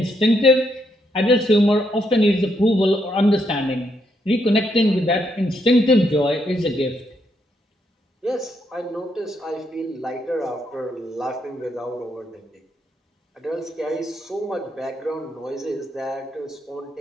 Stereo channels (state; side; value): normal; both; correlation 0.77